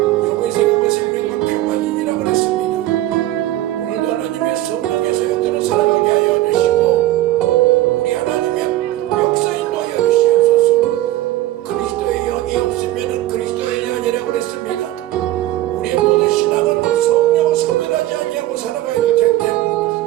영의 생각은 생명과 평안이니라 그랬습니다. 오늘도 하나님의 성령의 소용대로 살아가게 하여 주시고 우리 하나님의 역사인도 하여 주시옵소서. 그리스도의 영이 없으면 그리스도의 영이 아니라 그랬습니다. 우리의 모든 신앙은 성령을 소멸하지 아니하고 살아가야 될 텐데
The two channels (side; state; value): left; quieter; 15.4 dB